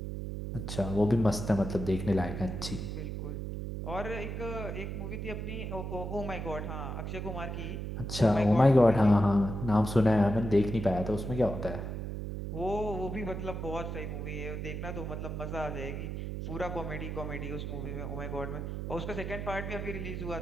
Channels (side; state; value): right; noise; hum, 5 dB below the sound